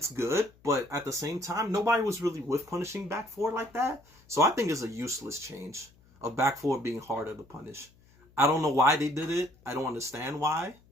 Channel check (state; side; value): noise; left; hum, 29 dB below the sound